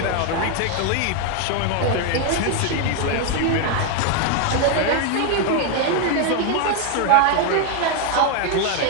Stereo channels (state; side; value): different; both; correlation 0.01